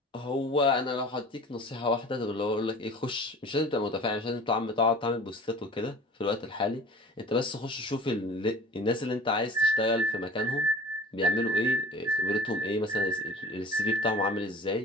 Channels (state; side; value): normal; both; correlation 0.43